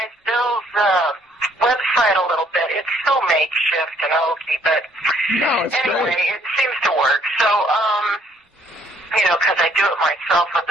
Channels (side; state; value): both; normal; correlation 0.64